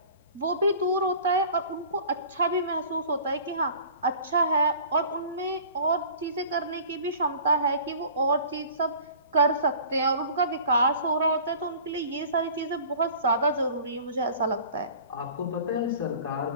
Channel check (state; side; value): inverted; both; correlation -0.44